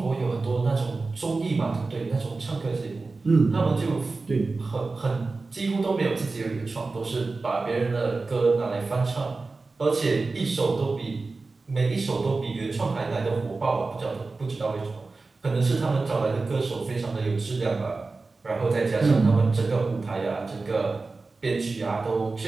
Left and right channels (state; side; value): quieter; left; 3.8 dB